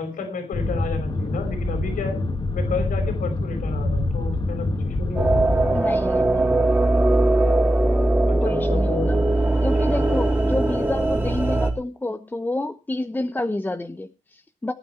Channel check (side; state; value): both; normal; correlation 0.90